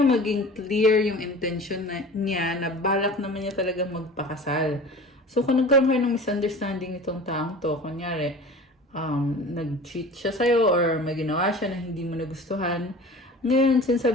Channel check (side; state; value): both; normal; correlation 0.39